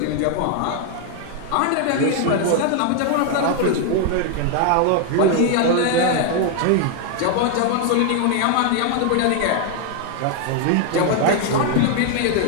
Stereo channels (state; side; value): different; both; correlation 0.01